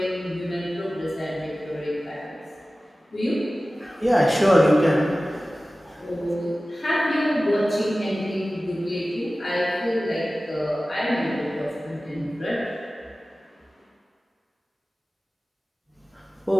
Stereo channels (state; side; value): normal; both; correlation 0.96